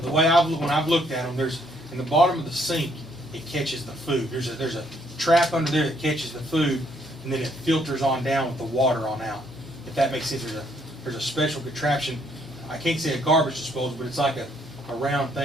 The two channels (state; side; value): normal; both; correlation 0.69